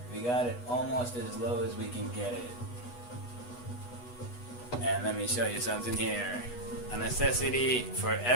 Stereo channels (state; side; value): late; right; 8.2 ms